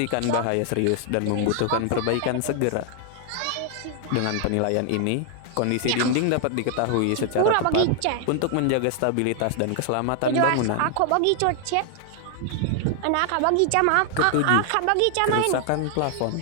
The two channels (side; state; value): both; different; correlation 0.00